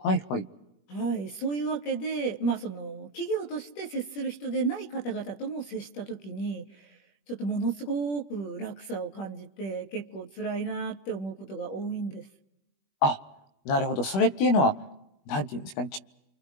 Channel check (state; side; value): late; right; 21 ms